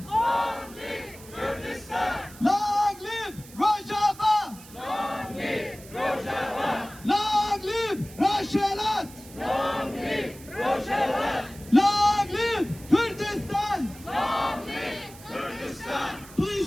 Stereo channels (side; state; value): right; noise; hiss, 19 dB below the sound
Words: Long live Kurdistan! Long live Rojava! Long live Rojava! Long live Rojhilat! Long live Rojava! Long live Kurdistan! Long live Kurdistan!